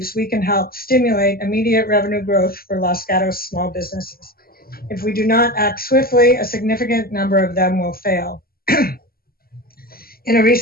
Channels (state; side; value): late; right; 0.43 ms